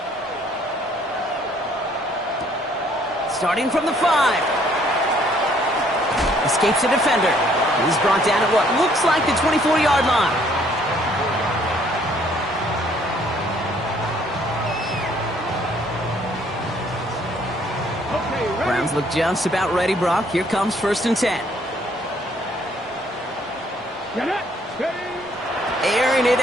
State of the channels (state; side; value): normal; both; correlation 0.63